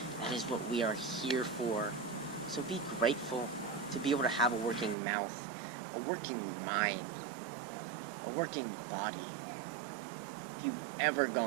That is what we are here for. So be grateful to be able to have a working mouth, a working mind, a working body. If you've ever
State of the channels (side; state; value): left; drops out; at 5.0 s